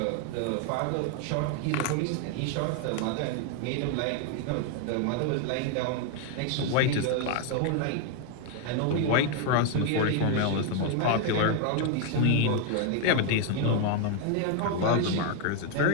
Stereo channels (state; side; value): different; both; correlation 0.01